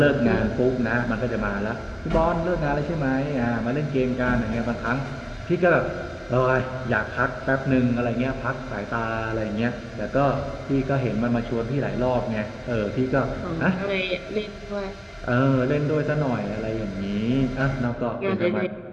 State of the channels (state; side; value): identical; both; correlation 1.00